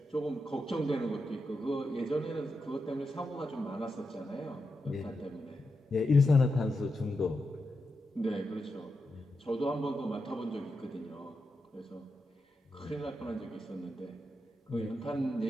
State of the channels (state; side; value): normal; both; correlation 0.87